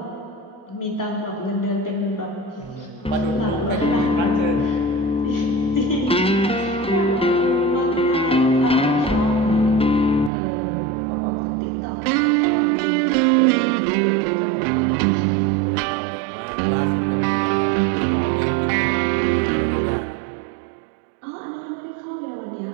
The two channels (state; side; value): drops out; left; at 10.3 s